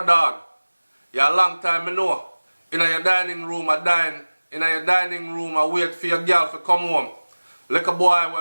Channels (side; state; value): both; inverted; correlation -1.00